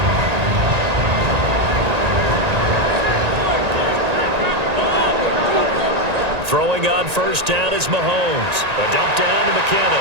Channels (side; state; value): left; late; 1.9 ms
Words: Throwing on first down is Mahomes. A dump down to